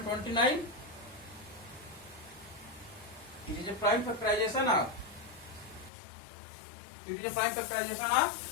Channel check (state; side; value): drops out; right; at 5.9 s